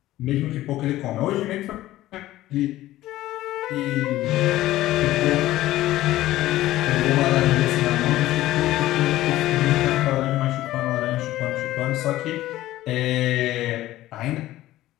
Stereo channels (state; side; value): quieter; right; 15.5 dB